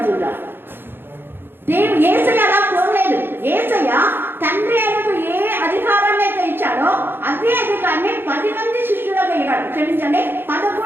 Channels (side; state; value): left; late; 0.10 ms